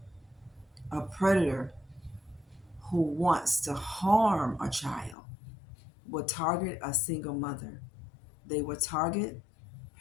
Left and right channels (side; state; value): right; drops out; at 5.2 s